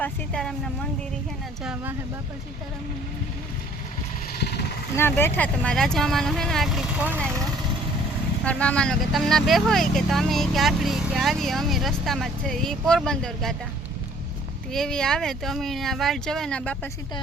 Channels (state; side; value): normal; both; correlation 0.57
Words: सीताराम ना मंदिर है ना जवा है बापा सीताराम ना ना बैठा तो मारा राजा मामा है ना आखरी फोन आयो और मामा नो के तमना बे होय के तमे के आखरी के आवी अमे रस्ता में छे ई पोरबंदर गाता तो एवी आवे तो अमे आ वाट जवे ना बापा